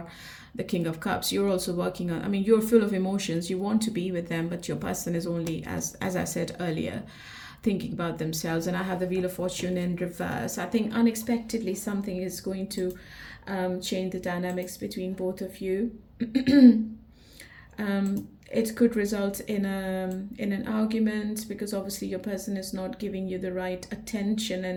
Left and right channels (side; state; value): both; identical; correlation 1.00